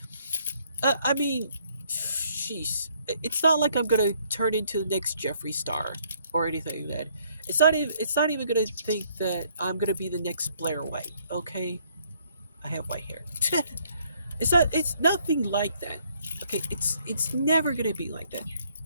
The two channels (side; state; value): both; inverted; correlation -0.66